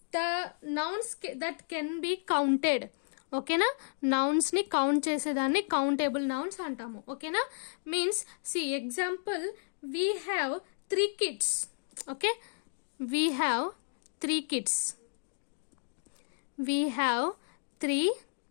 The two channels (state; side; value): silent; right; digital silence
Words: the nouns that can be counted. Okay na? Nouns ni count చేసేదాన్ని countable nouns అంటాము. Okay na? Means see example, we have 3 kids. Okay, we have 3 kids. We have 3